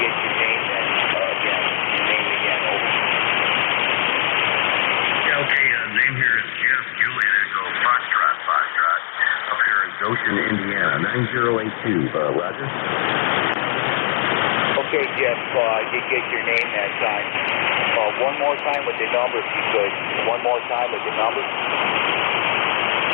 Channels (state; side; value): silent; right; 62 dB below the other